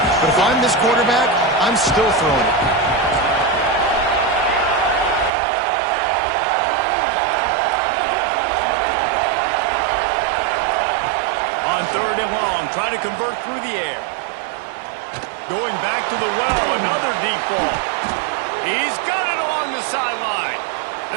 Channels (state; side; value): drops out; left; at 5.3 s